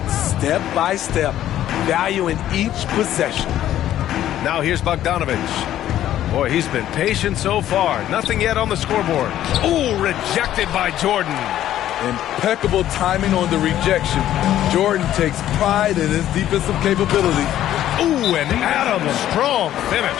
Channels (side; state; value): right; quieter; 12.3 dB